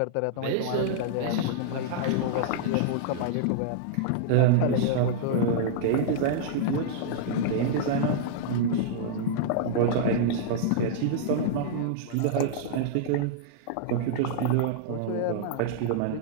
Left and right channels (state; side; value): different; both; correlation -0.02